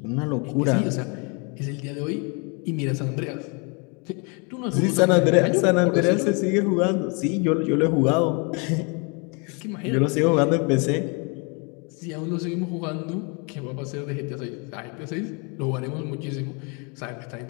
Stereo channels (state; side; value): quieter; right; 33.3 dB